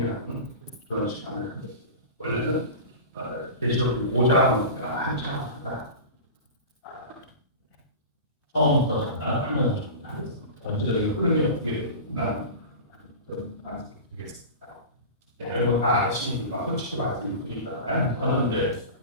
그런 시간을 갖겠습니다. 원래는 계시록 5장을 한 차례마다 처음부터 잠깐 하면서 정리하겠습니다. 전체적인 흐름이 어떻게 되는가 말씀드리겠습니다. 여러분 다 아시는 바 솔직히 말씀드리잖아요. 저는 이제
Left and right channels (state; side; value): inverted; both; correlation -0.31